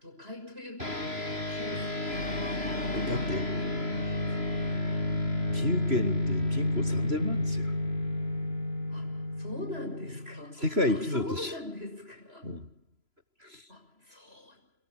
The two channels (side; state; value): left; late; 3.0 ms